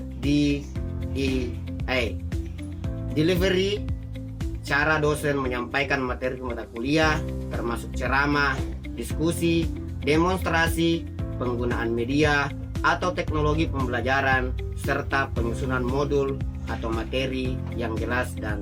DEA. Delivery, cara dosen menyampaikan materi mata kuliah, termasuk ceramah, diskusi, demonstrasi, penggunaan media atau teknologi pembelajaran, serta penyusunan modul atau materi yang jelas dan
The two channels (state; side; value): identical; both; correlation 1.00